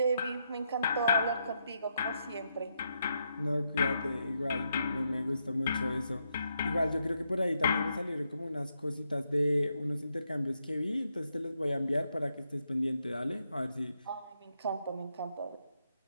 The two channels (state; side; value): inverted; both; correlation -0.81